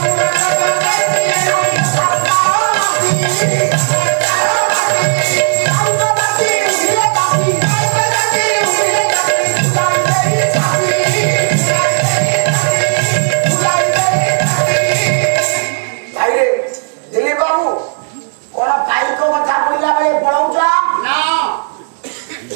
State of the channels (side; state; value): left; silent; digital silence